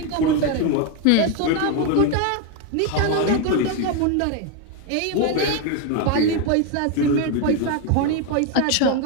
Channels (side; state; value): both; different; correlation 0.02